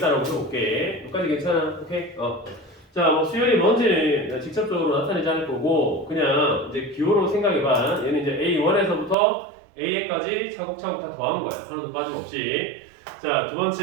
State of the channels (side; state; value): left; drops out; at 9.2 s